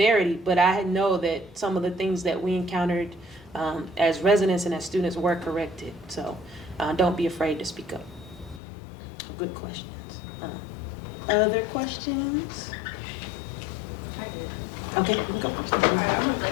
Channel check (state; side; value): drops out; right; at 8.6 s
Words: but I know that some of the things that we encountered as residents and as students were corrected. So don't be afraid to speak up. Good questions. Other questions? Okay, you can go first. I'm